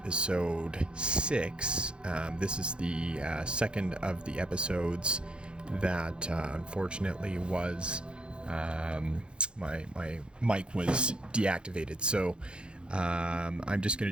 6. This is the second of the episodes that unfortunately was my mic was deactivated. So I'm just going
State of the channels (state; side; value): late; left; 0.054 ms